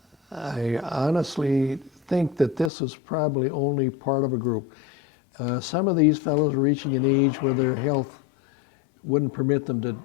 I honestly think that this was probably only part of a group. Some of these fellows are reaching an age where their health wouldn't permit them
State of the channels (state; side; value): drops out; right; at 2.7 s